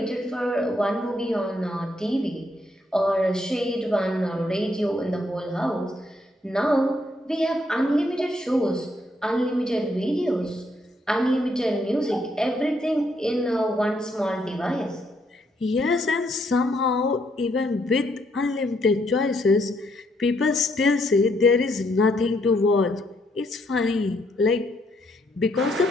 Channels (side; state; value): both; normal; correlation 0.73